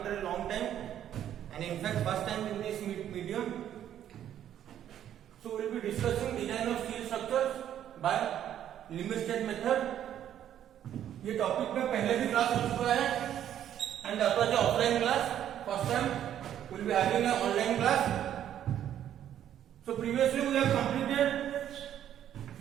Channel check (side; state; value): left; quieter; 10.6 dB